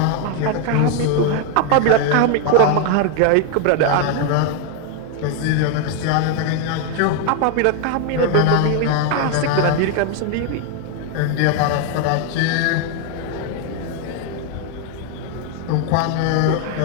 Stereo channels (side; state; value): both; different; correlation 0.01